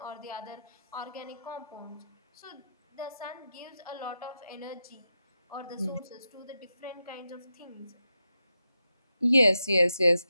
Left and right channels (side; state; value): both; inverted; correlation -0.88